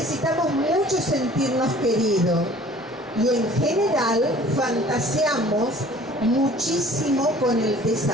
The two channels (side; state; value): both; normal; correlation 0.50